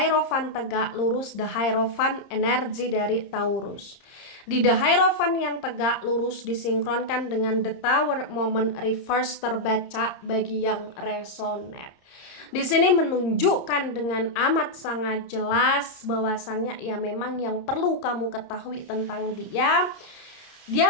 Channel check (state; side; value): late; right; 30 ms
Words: tegak lurus, the Hierophant energi dari Taurus. Di the Hierophant yang tegak lurus disinkronkan dengan the Tower moment reverse terbaca bagi yang resonate. Di sini menunjukkan dengan amat sangat jelas bahwasannya ya memang yang perlu kamu ketahui tentang dia.